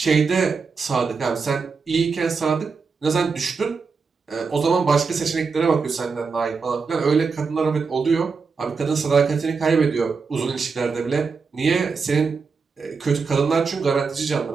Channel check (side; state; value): left; quieter; 5.0 dB